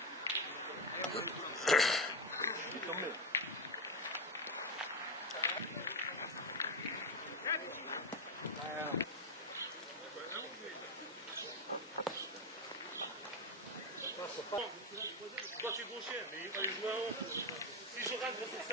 Il est tombé. Toi tu es gaucher, mais il fallait jouer en haut. Si je rentre sur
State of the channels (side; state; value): both; normal; correlation 0.10